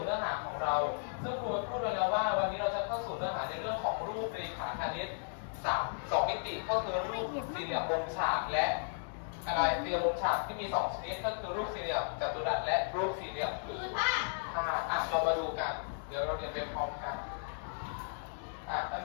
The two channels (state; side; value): silent; right; digital silence